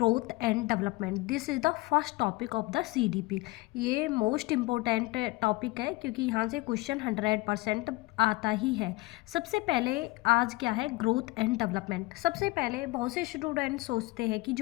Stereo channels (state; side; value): quieter; right; 21.3 dB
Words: and development. This is the first topic of the CDP. ये मोस्ट इम्पोर्टेंट टॉपिक है क्योंकि यहाँ से क्वेश्चन 100% आता ही है। सबसे पहले आज क्या है, ग्रोथ एंड डेवलपमेंट। सबसे पहले बहुत से स्टूडेंट सोचते हैं कि